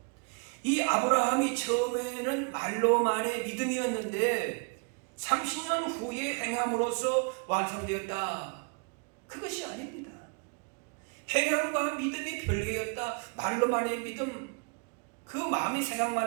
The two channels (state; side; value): quieter; left; 36.2 dB